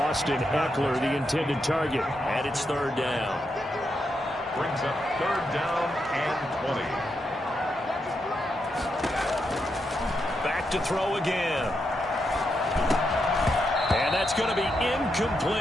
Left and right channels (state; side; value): normal; both; correlation 0.83